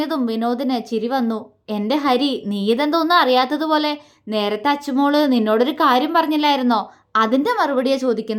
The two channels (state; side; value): identical; both; correlation 1.00